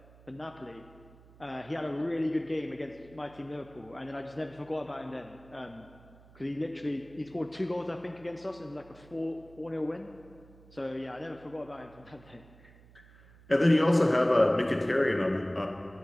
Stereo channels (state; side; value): noise; right; hum, 24 dB below the sound